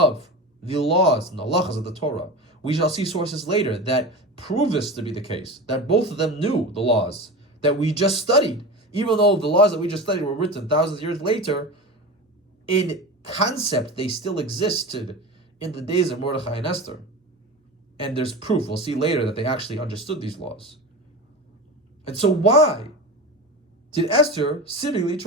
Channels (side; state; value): both; normal; correlation 0.28